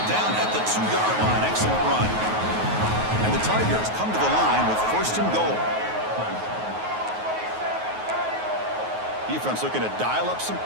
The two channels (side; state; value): left; late; 9.4 ms